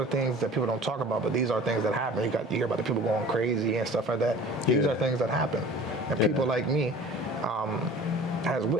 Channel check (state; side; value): normal; both; correlation 0.44